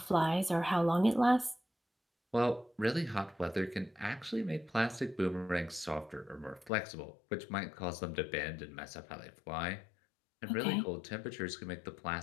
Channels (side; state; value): right; drops out; at 6.7 s